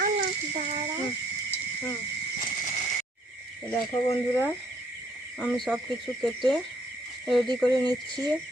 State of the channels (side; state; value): both; normal; correlation 0.66